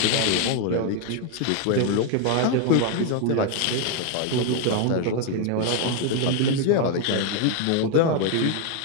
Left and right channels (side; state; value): both; different; correlation 0.01